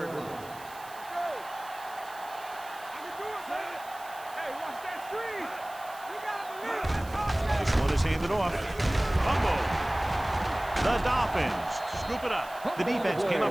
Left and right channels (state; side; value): noise; right; hiss, 19 dB below the sound